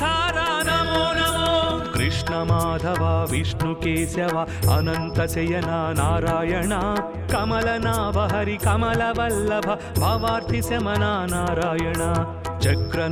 नमो नमो कृष्ण माधव विष्णु केशव अनंत शयना नारायण कमलनाभ हरि कमलवल्लभ भवार्ति शमना नारायण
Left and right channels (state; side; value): identical; both; correlation 1.00